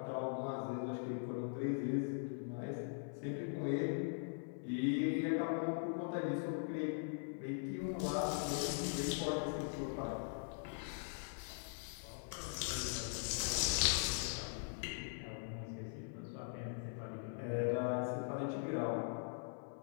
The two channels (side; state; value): right; silent; 50 dB below the other